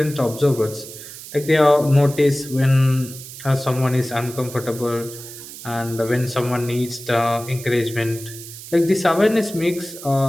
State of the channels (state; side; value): noise; right; hiss, 14 dB below the sound